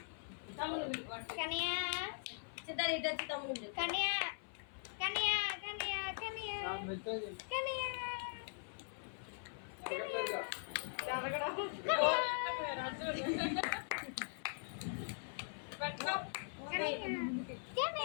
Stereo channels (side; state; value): right; silent; 50 dB below the other